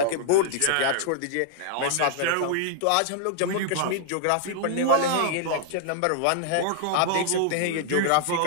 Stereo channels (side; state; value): both; different; correlation -0.01